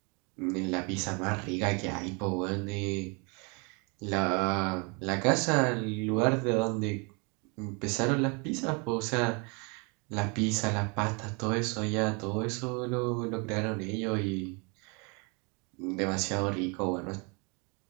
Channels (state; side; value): quieter; left; 32.2 dB